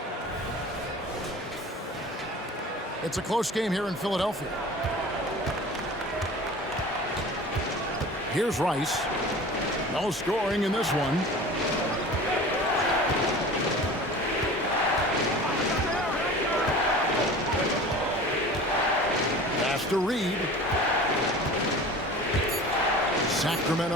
It's a close game here in Philadelphia. Here's Rice. No scoring in this one. Pass to Reed.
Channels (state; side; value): normal; both; correlation 0.39